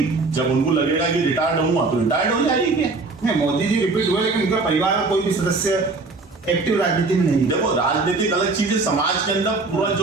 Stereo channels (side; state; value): left; quieter; 3.7 dB